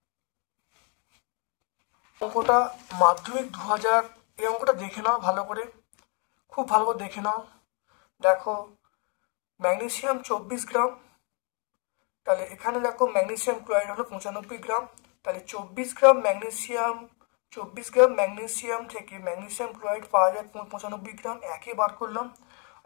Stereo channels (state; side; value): quieter; right; 36.7 dB